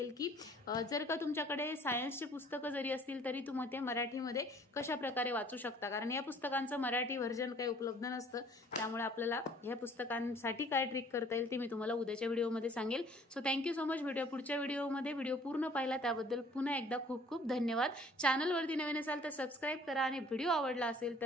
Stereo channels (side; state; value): both; normal; correlation 0.55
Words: की जर का तुमच्याकडे सायन्सचे पुस्तकं जरी असतील तरी तुम्ही ते मराठीमध्ये कशा प्रकारे वाचू शकता, कारण या पुस्तकांचं मराठी व्हर्जन काही उपलब्ध नसतं. त्यामुळे आपल्याला ह्या पुस्तकांसाठी काय ट्रिक करता येईल ते मी तुम्हाला उद्याच्या व्हिडिओमध्ये सांगेल. सो थँक्यू सो मच. भेटूया पुढच्या व्हिडिओमध्ये. व्हिडिओ पूर्ण पाहिला त्याबद्दल पुन्हा एकदा खूप खूप धन्यवाद. चॅनलवरती नवीन असाल तर सबस्क्राईब करा, आणि व्हिडिओ आवडला असेल